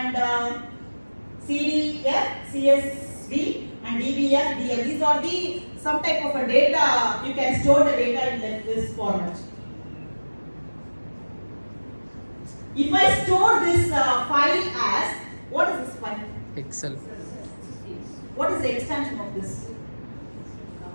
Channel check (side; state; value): both; inverted; correlation -1.00